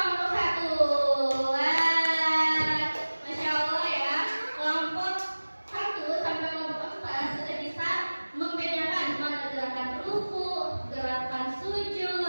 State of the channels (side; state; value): both; inverted; correlation -1.00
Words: untuk satu. Wah, Masya Allah ya. Kelompok 1 sampai kelompok 4 sudah bisa membedakan mana gerakan ruku, gerakan